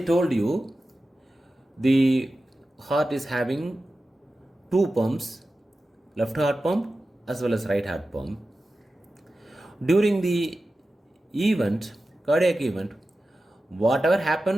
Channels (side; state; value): both; normal; correlation 0.94